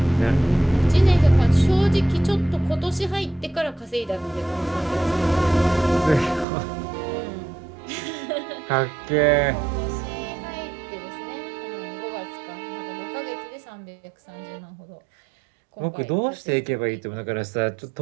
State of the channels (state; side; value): drops out; left; at 6.5 s